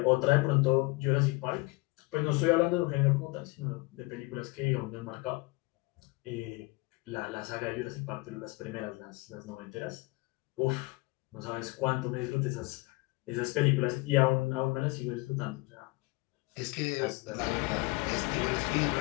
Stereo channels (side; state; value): right; quieter; 23.7 dB